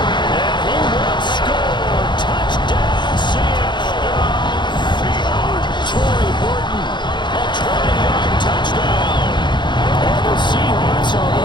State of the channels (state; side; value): late; right; 0.22 ms